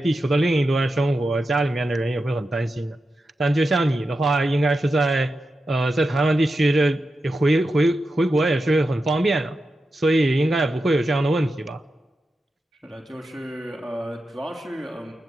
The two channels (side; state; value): both; normal; correlation 0.90